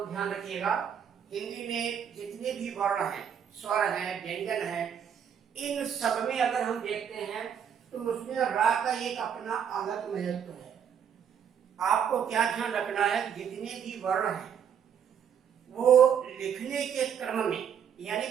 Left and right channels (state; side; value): quieter; left; 8.1 dB